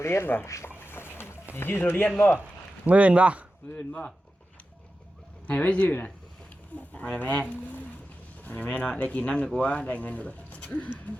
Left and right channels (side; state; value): both; normal; correlation 0.92